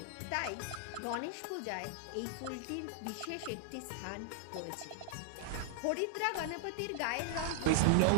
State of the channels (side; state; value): both; different; correlation -0.01